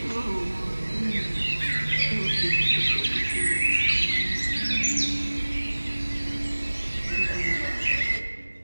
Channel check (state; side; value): inverted; both; correlation -1.00